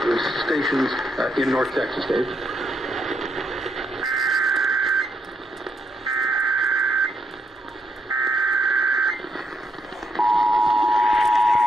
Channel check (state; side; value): normal; both; correlation 0.78